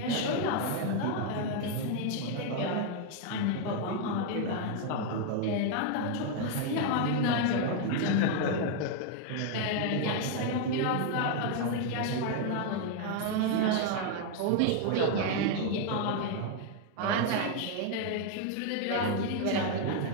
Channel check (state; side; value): different; both; correlation 0.00